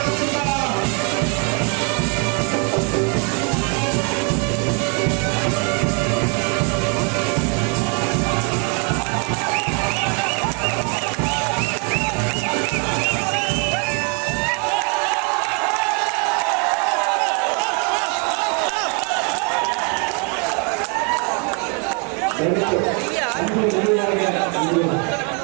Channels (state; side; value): quieter; left; 36.6 dB